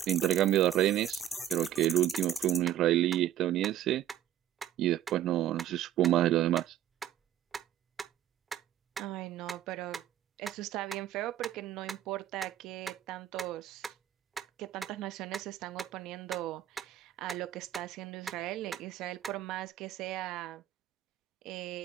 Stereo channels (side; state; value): left; quieter; 11.7 dB